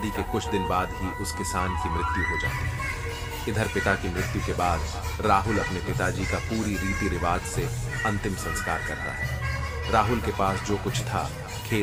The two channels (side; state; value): both; identical; correlation 1.00